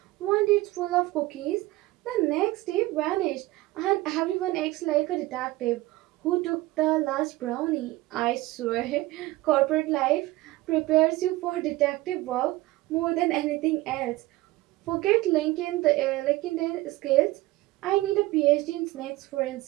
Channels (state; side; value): quieter; left; 18.7 dB